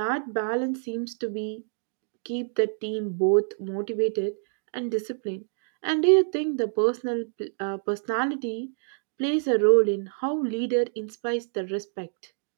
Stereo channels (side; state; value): left; silent; digital silence